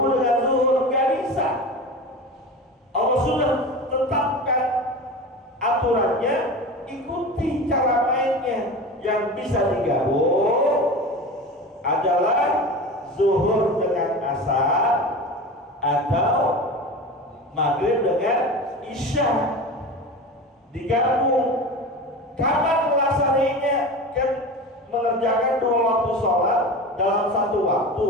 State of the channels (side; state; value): both; normal; correlation 0.30